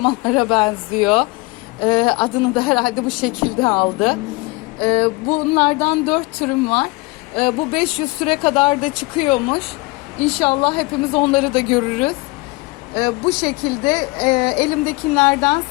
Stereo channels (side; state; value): right; quieter; 24.3 dB